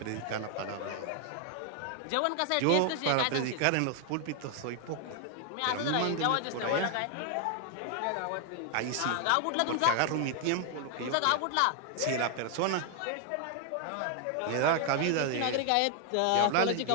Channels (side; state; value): both; different; correlation 0.00